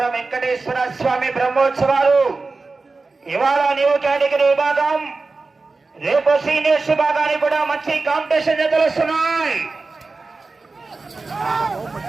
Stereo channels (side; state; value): left; quieter; 3.8 dB